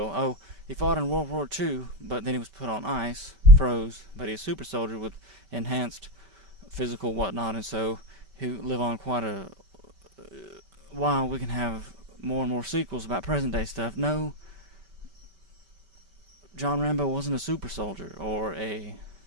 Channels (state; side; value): late; left; 5.2 ms